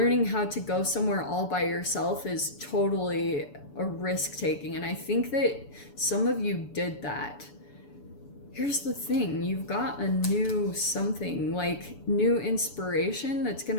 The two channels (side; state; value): right; late; 6.9 ms